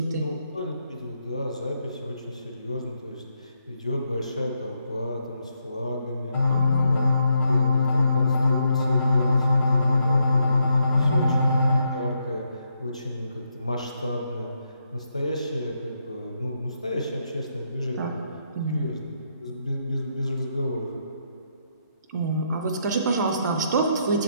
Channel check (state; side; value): inverted; both; correlation -0.78